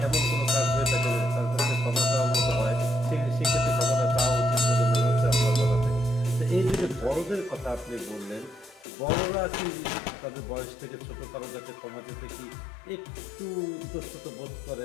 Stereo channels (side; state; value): right; drops out; at 8.8 s